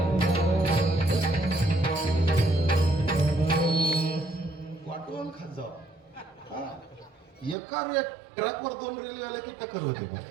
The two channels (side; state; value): left; drops out; at 7.6 s